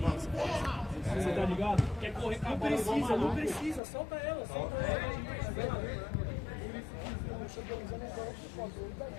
Você tá ligado? Quer correr com a bola? Não precisa, solta ela.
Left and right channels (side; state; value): right; drops out; at 3.8 s